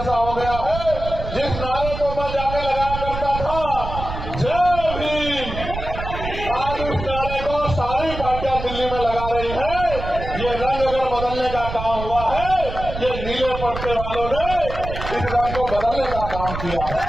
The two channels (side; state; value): right; noise; rumble, 7 dB below the sound